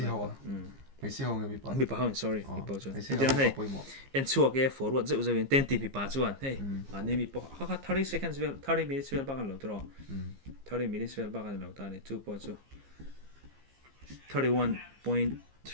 hawa me si hawa mi pa sorry mi pa chuan entinan hey en chuak e forward zeu zeu in 10 ti mi pa chuan hey ani mi po kha 30 seconds vel 30 minutes vel ba kan lo tro 30 minutes vel ba kan lo ta ni chu po chu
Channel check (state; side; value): late; left; 15 ms